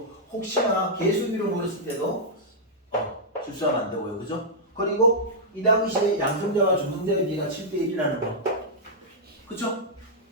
혹시나 개수비로 물었을 때도 실수하면 안 되고요. 그죠? 그리고 이 당시에 양성자와 중성자의 비가 7대 1이라는 거. 그쵸?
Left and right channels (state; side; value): normal; both; correlation -0.08